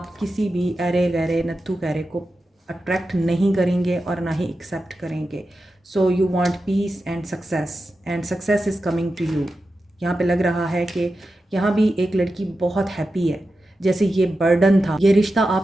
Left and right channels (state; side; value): normal; both; correlation 0.91